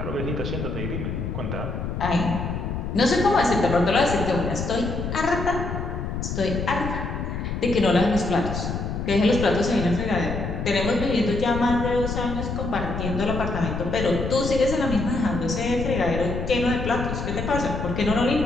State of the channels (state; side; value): noise; left; rumble, 4 dB below the sound